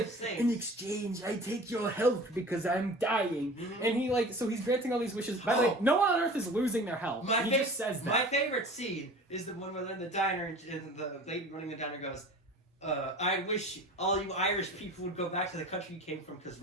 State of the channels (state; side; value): normal; both; correlation 0.40